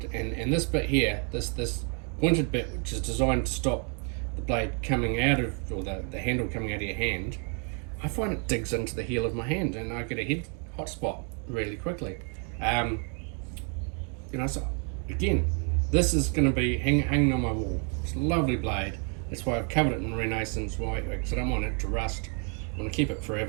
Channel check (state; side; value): quieter; left; 39.5 dB